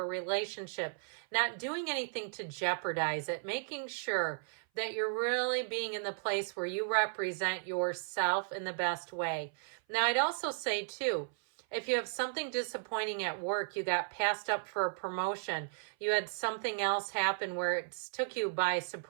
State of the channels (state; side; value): silent; left; 54 dB below the other